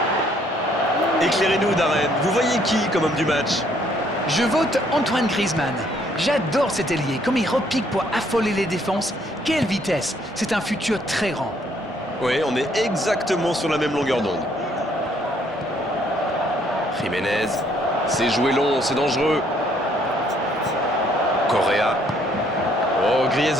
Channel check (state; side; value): normal; both; correlation 0.66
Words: Éclairez-nous, Darren. Vous voyez qui comme homme du match? Je vote Antoine Griezmann. J'adore cet ailier. Comme il repique pour affoler les défenses. Quelle vitesse! C'est un futur très grand. Oui, on est exactement sur la même longueur d'onde. Jiménez, c'est joué long, c'est dangereux. Correa. Oh,